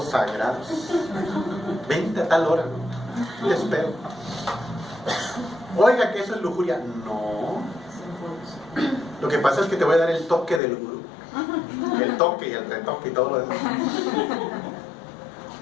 sagrados. Vente a tal hora, ¿no? Te espero. Oiga, que eso es lujuria. No. Lo que pasa es que te voy a dar el toque del gurú. El toque y el retoque y todo lo demás.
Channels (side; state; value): right; drops out; at 10.6 s